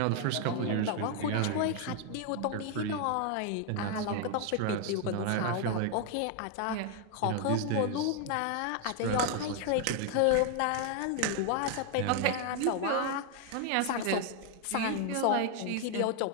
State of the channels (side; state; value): both; different; correlation 0.00